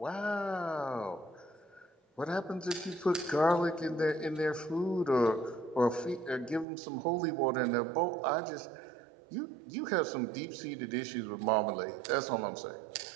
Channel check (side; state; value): left; drops out; at 6.7 s